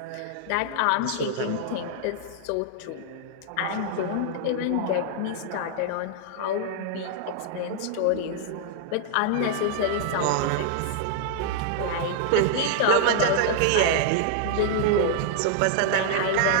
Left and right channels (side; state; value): both; different; correlation -0.01